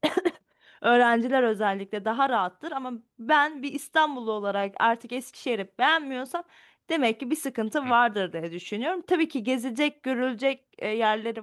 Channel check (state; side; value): identical; both; correlation 1.00